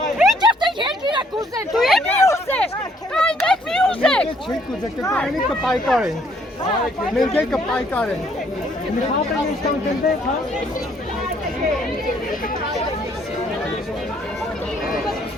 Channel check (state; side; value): normal; both; correlation 0.66